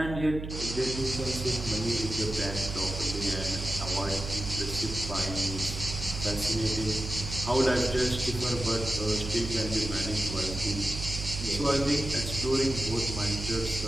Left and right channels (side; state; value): right; noise; hum, 7 dB below the sound